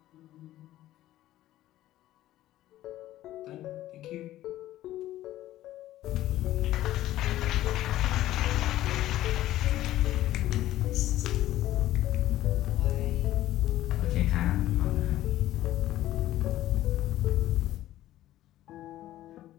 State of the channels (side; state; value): right; quieter; 14.4 dB